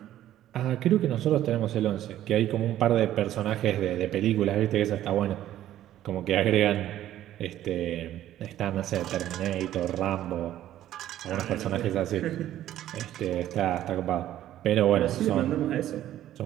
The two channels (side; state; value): left; quieter; 12.7 dB